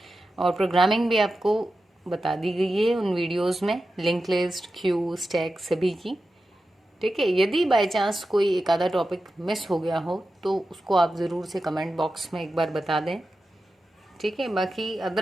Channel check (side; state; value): both; normal; correlation 0.92